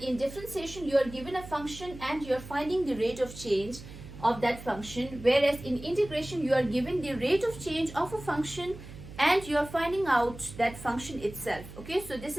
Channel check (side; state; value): right; noise; hum, 15 dB below the sound